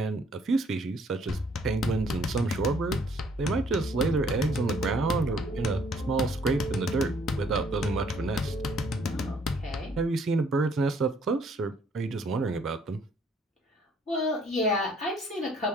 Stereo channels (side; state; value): both; normal; correlation 0.63